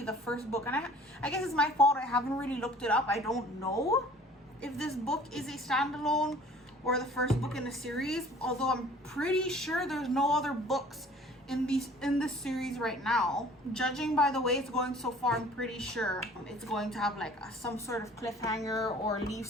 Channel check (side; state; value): both; normal; correlation 0.50